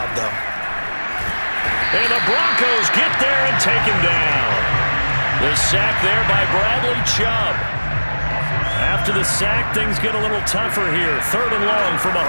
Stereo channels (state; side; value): inverted; both; correlation -1.00